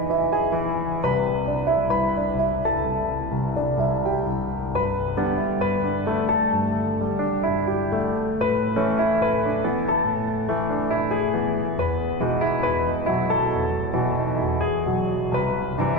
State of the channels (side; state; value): left; noise; rumble, 13 dB below the sound